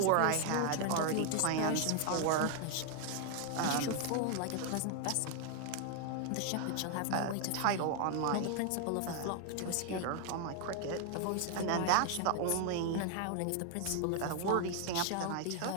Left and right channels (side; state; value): both; different; correlation 0.00